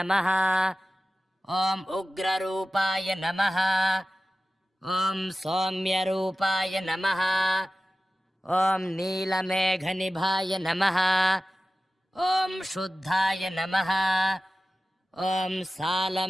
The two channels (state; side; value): normal; both; correlation 0.95